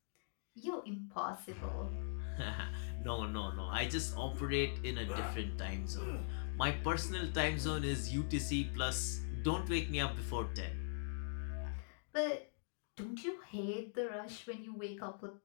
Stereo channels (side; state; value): right; silent; digital silence